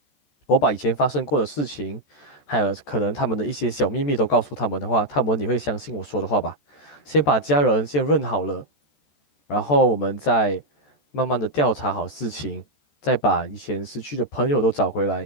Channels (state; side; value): late; right; 14 ms